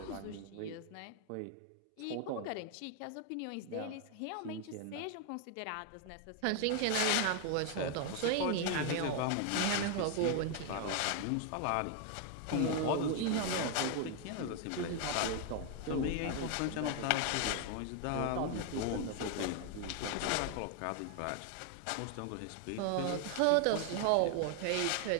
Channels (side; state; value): both; different; correlation 0.01